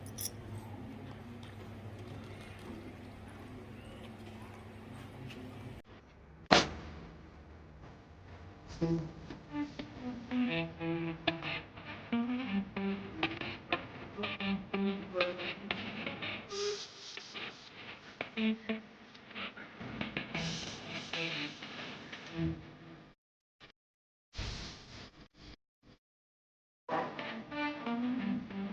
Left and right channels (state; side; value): identical; both; correlation 1.00